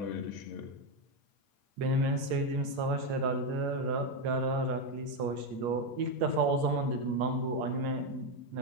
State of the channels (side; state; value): left; late; 8.6 ms